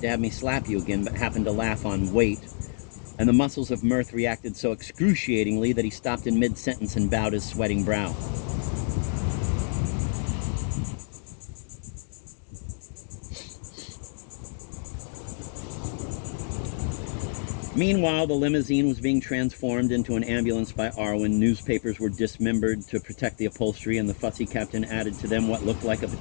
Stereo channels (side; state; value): right; silent; 60 dB below the other